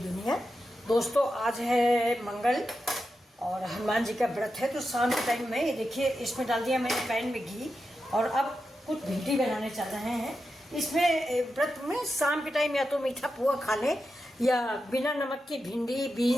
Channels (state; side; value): normal; both; correlation 0.89